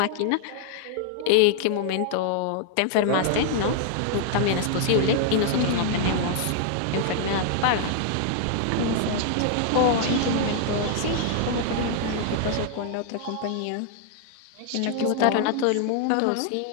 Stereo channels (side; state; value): both; different; correlation 0.00